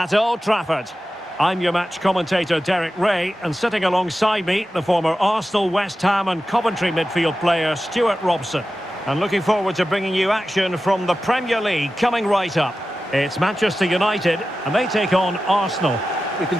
Old Trafford. I'm your match commentator Derek Ray, and sitting alongside me, the former Arsenal, West Ham and Coventry midfield player Stuart Robson. And looking forward to bringing you action from the Premier League coming right up. It's Manchester United, and they take on Arsenal. We can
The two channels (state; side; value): normal; both; correlation 0.93